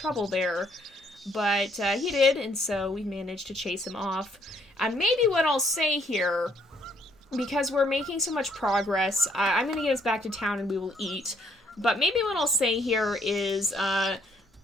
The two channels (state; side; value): normal; both; correlation 0.68